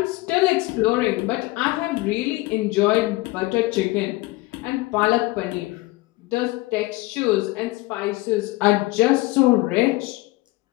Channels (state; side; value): quieter; right; 20.8 dB